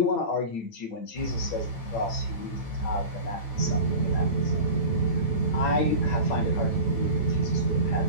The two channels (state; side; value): late; right; 9.0 ms